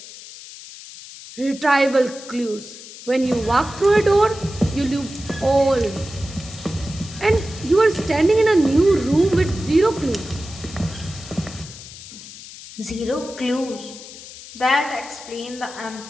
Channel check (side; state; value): left; noise; hiss, 15 dB below the sound